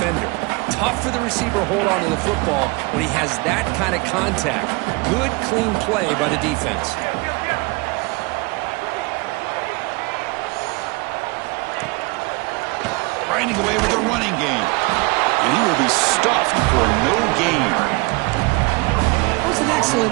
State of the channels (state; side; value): quieter; left; 26.7 dB